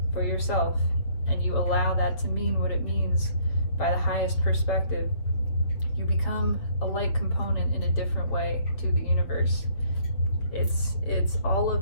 for yourself, and you allow that to mean what it means by the highest perspective, you become a light component in a different way to the universe. It's all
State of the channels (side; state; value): right; late; 7.2 ms